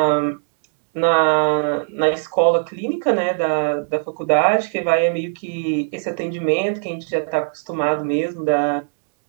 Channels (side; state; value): left; silent; digital silence